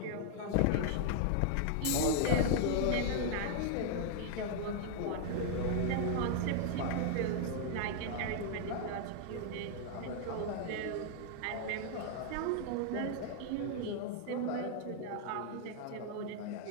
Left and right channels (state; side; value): different; both; correlation 0.00